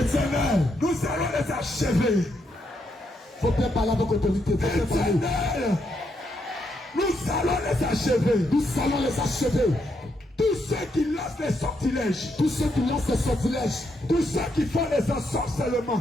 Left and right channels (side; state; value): both; normal; correlation 0.79